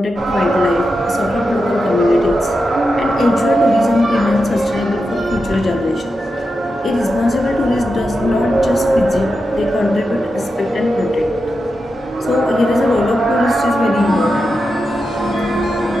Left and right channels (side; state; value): both; normal; correlation 0.88